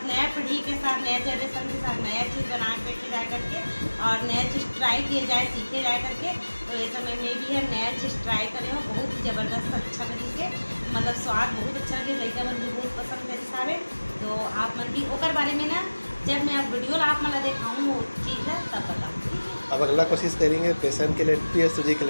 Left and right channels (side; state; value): both; inverted; correlation -1.00